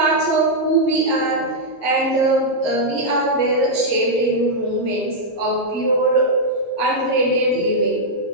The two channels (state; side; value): late; right; 5.8 ms